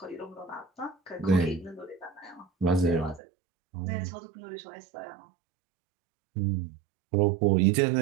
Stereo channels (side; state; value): left; drops out; at 3.2 s